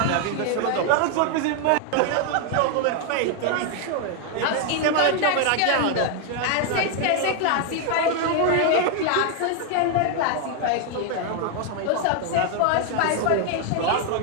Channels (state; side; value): different; both; correlation 0.00